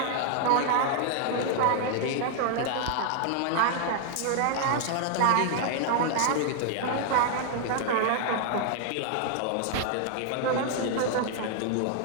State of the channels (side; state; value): both; different; correlation 0.00